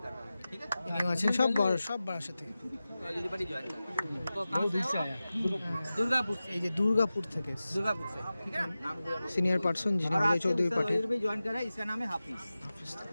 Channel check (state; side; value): inverted; both; correlation -0.95